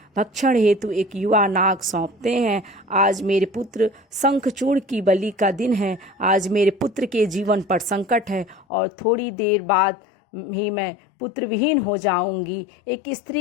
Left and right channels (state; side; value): drops out; right; at 8.7 s